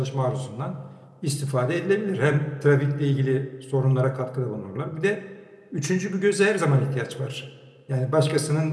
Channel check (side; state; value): both; identical; correlation 1.00